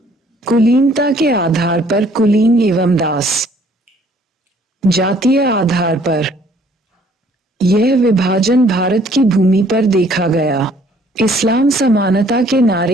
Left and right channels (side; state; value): both; normal; correlation 0.60